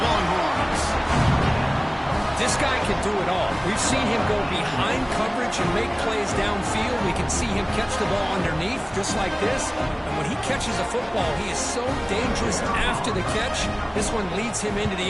Longhorns. This guy can do it all. We've seen him go behind coverage and make plays downfield. We can see him catch the ball underneath, just like this. And when he catches a football, he is so dangerous after the catch. This one leads him into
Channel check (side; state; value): both; identical; correlation 1.00